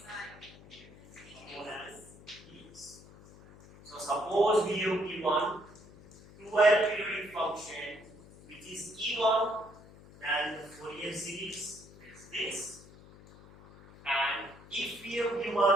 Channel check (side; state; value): left; noise; hum, 21 dB below the sound